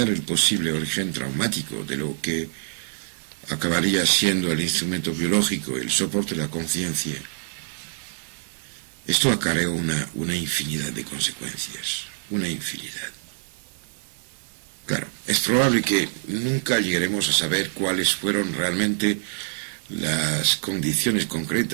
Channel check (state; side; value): silent; left; digital silence